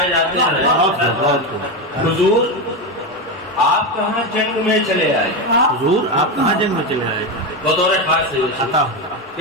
جاتے ہیں. حضور آپ کہاں جنگ میں چلے آئے؟ حضور آپ کہاں جنگ میں چلے آئے؟ بطور خاص سے عطا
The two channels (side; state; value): both; normal; correlation 0.14